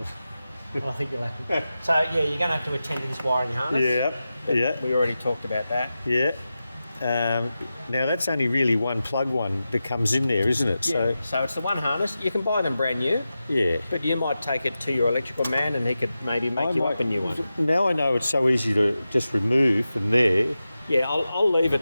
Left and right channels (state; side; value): inverted; both; correlation -0.92